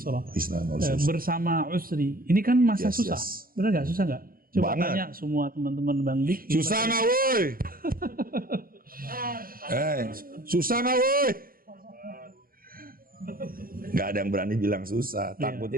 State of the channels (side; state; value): left; late; 0.42 ms